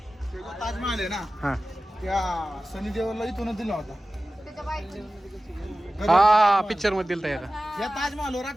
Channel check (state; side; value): normal; both; correlation 0.96